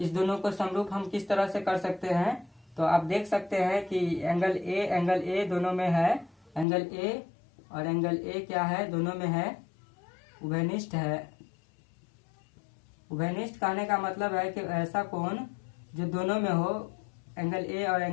दोनों को समरूप हम किस तरह से कर सकते हैं। तो आप देख सकते हैं कि एंगल A दोनों में है, एंगल A और एंगल A क्या है, दोनों में है, उभयनिष्ठ है। उभयनिष्ठ कहने का मतलब है कि ऐसा कोण जो दोनों में हो, एंगल A और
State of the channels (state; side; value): drops out; right; at 6.7 s